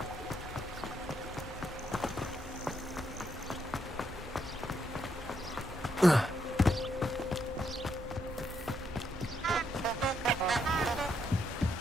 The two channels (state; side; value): normal; both; correlation 0.77